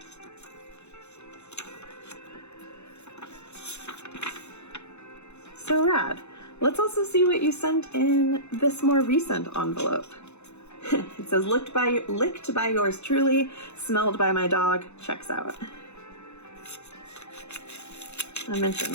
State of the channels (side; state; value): right; late; 0.81 ms